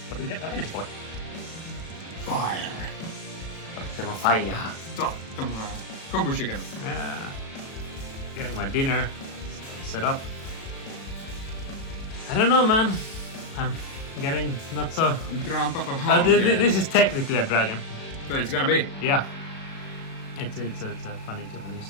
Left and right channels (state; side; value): late; right; 36 ms